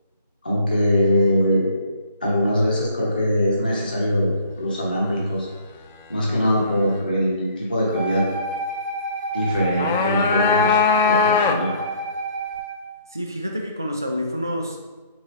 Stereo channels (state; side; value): inverted; both; correlation -0.59